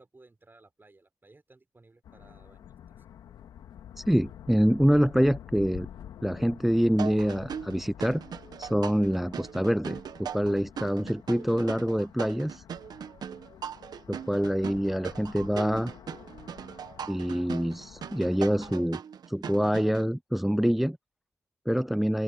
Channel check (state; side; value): normal; both; correlation 0.98